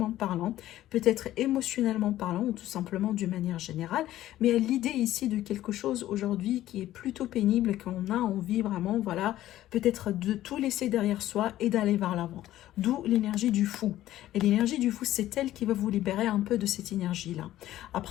parlant, peut-être émotionnellement parlant, ou tout simplement d'une manière générale. Mais l'idée ici de quelque chose aujourd'hui qui est plutôt pénible, qu'on a envie vraiment, voilà, peut-être de tout laisser derrière soi et d'aller vers l'avant. D'où l'énergie du fou. Et l'énergie du fou, c'est elle qui va vous libérer un peu de cette énergie-là.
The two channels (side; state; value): right; quieter; 14.0 dB